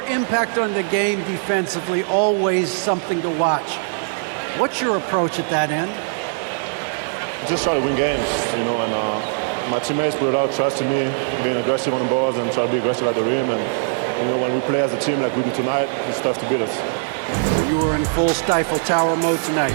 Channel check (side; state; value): left; silent; digital silence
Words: impact on the game defensively, always something to watch. What's your approach at that end? Just try to win games, and my teammates put a lot of trust in me, being aggressive on the balls and try to be aggressive at the rim. And, when we play as a team like we do tonight, it's tough to beat us. You were in full Stifle Tower mode tonight,